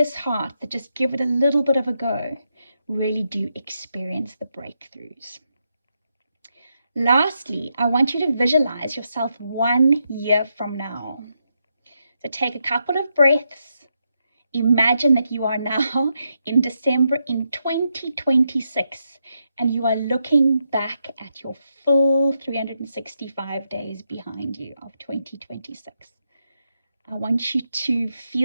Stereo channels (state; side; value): inverted; both; correlation -0.83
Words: heart that just give it a little bit of a go really do experience the breakthroughs. Lastly, I want you to visualize yourself 1 year from now. So take a couple of breaths. Imagine that you are now in December in 2026 and you are looking back at your full 365 days behind you of 2026. I want you to